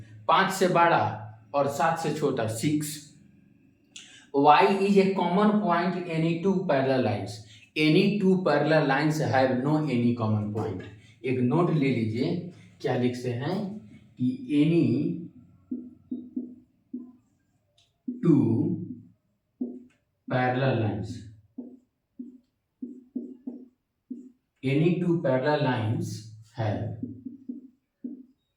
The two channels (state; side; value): identical; both; correlation 1.00